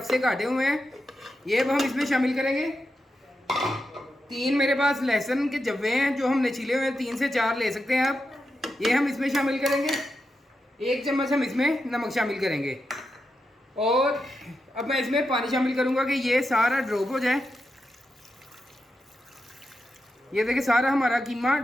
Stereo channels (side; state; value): both; normal; correlation 0.87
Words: से काटे हुए हैं, ये अब हम इसमें शामिल करेंगे। 3 मेरे पास लहसुन के जब्वे हैं जो हमने छीले हुए हैं, 3 से 4 ले सकते हैं आप। ये हम इसमें शामिल करेंगे। 1 चम्मच हम इसमें नमक शामिल करेंगे और अब मैं इसमें पानी शामिल करूँगा कि ये सारा ड्रॉप हो जाए। ये देखिए सारा हमारा कीमा